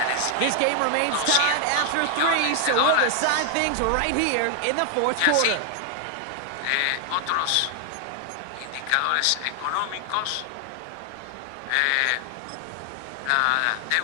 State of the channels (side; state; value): both; different; correlation 0.00